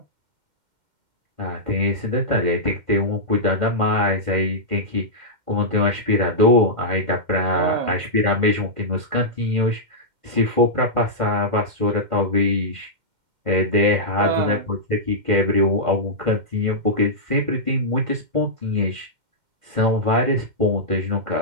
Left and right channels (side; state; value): left; late; 2.1 ms